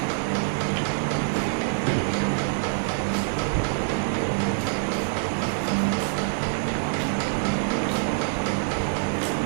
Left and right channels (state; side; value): silent; left; digital silence